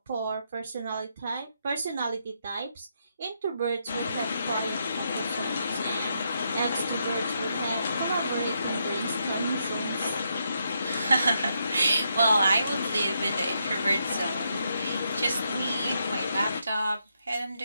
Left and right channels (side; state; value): both; inverted; correlation -0.79